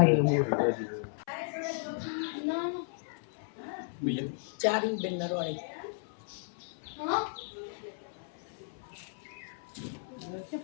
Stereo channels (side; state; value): right; silent; 55 dB below the other